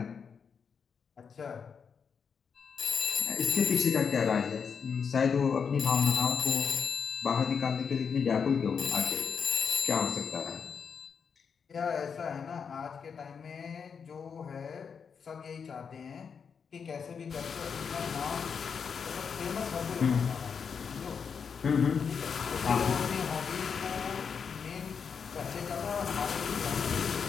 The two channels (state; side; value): quieter; right; 6.4 dB